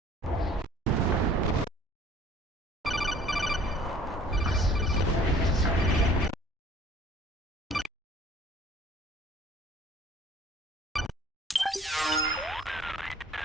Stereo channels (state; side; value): normal; both; correlation 0.53